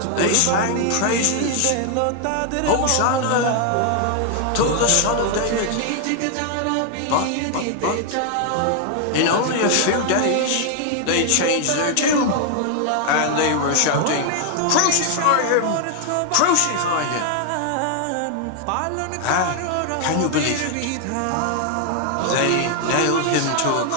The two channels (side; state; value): both; different; correlation 0.00